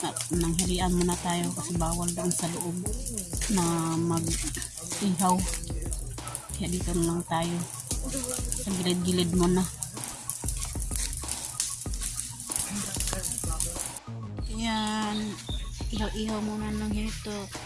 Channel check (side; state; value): both; identical; correlation 1.00